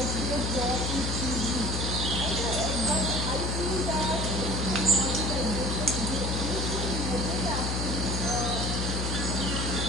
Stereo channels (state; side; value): noise; left; hum, 1 dB below the sound